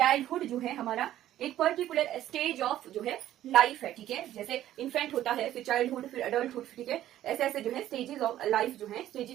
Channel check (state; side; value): quieter; left; 12.9 dB